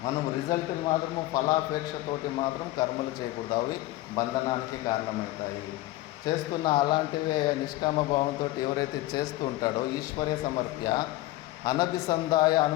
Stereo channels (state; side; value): quieter; right; 17.2 dB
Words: మనం రిజల్ట్లు మాత్రము ఫలాపేక్షతోటి మాత్రం కర్మలు చేయకూడదు. అవి బంధనానికి కారణమవుతాయి. చేస్తున్న అలాంటివే నిష్కామ భావంతో ఎవరైతే చేస్తూ ఉంటాడో ఈశ్వరే సమర్ప్య అనభిసంధాయ